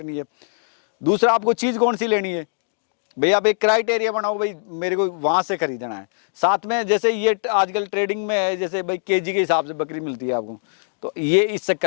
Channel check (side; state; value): right; silent; digital silence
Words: है, दूसरा आपको चीज़ कौन सी लेनी है। भाई, आप एक क्राइटेरिया बनाओ, भाई मेरे को वहाँ से खरीदना है। साथ में जैसे ये आजकल ट्रेडिंग में है, जैसे भाई केजी के हिसाब से बकरी मिलती है आपको, तो ये इस